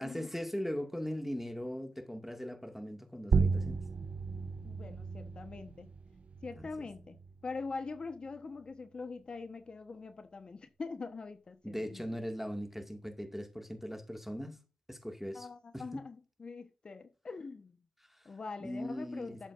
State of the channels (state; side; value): normal; both; correlation 0.90